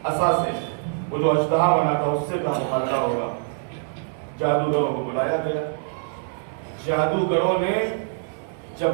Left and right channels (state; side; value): silent; left; 62 dB below the other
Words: عصا سے، وہ جو اژدہا بنا تھا اس سے کہاں مقابلہ ہوگا؟ جادوگروں کو بلایا گیا۔ جادوگروں نے